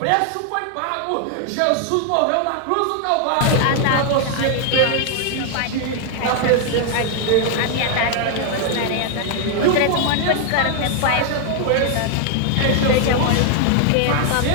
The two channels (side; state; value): both; different; correlation 0.00